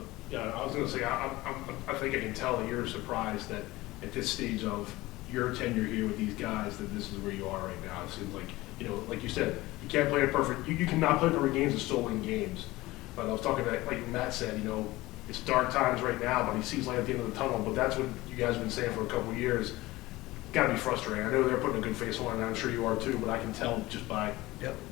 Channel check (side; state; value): right; quieter; 19.2 dB